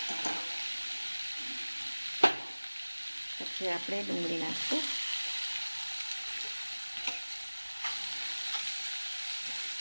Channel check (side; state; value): both; inverted; correlation -1.00